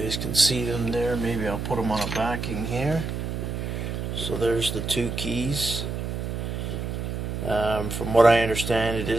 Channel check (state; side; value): noise; right; hum, 4 dB below the sound